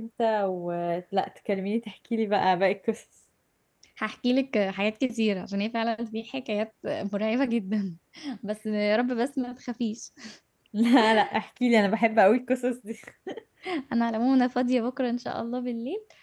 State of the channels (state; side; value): identical; both; correlation 1.00